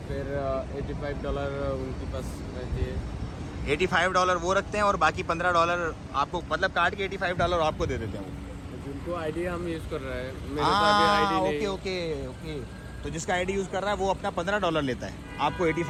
फिर $85 उनके पास रहती है। $85 वो रखते हैं और बाकी $15 आपको, मतलब काट के $85 आपको दे देते हैं वो। जिनको आईडी हम यूज़ कर रहे हैं, मेरे तो हाँ, अभी आईडी नहीं। Okay okay okay. तो जिसका आईडी यूज़ कर रहा है वो अपना $15 लेता है, आपको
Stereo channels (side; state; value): both; identical; correlation 1.00